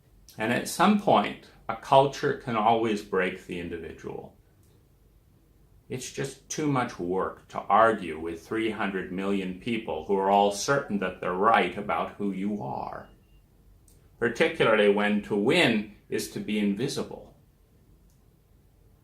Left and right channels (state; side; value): identical; both; correlation 1.00